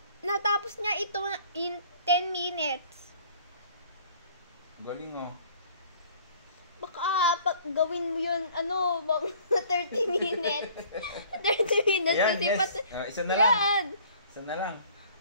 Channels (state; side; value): inverted; both; correlation -0.54